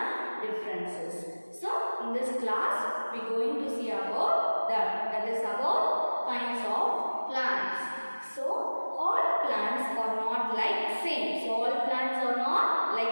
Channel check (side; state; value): both; inverted; correlation -1.00